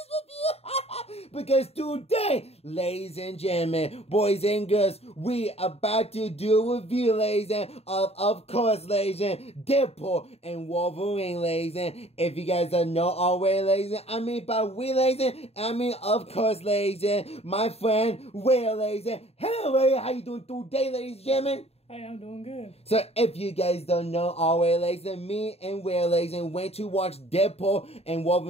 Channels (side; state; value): right; late; 0.30 ms